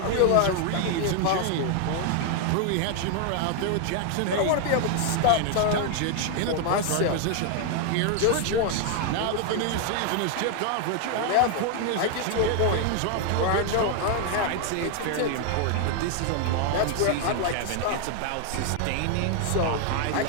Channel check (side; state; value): both; different; correlation 0.00